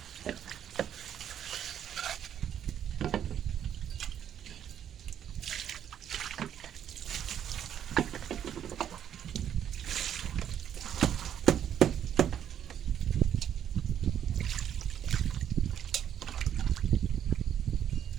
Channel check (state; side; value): quieter; left; 9.6 dB